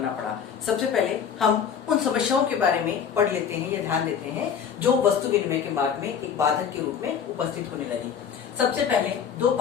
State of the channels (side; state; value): right; quieter; 7.5 dB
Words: पड़ा। सबसे पहले हम उन समस्याओं के बारे में पढ़ लेते हैं या ध्यान देते हैं जो वस्तु विनिमय के मार्ग में एक बाधक के रूप में उपस्थित होने लगी। सबसे पहले दो